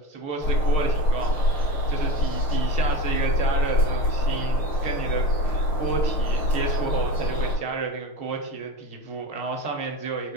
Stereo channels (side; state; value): right; late; 6.6 ms